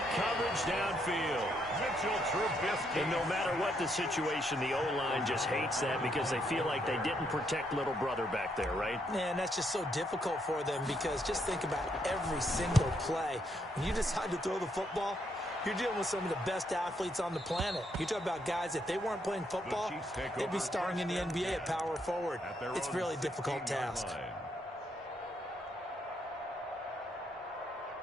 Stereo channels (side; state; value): both; normal; correlation 0.75